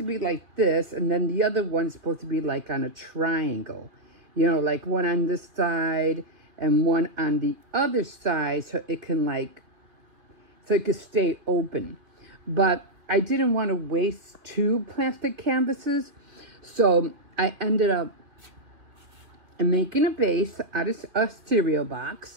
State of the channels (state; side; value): late; left; 2.7 ms